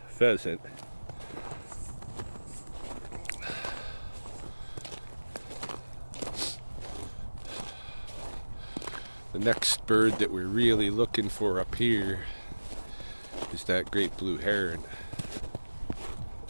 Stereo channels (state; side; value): inverted; both; correlation -1.00